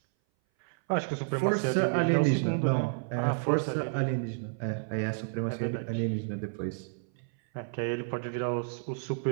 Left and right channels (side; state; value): left; silent; 58 dB below the other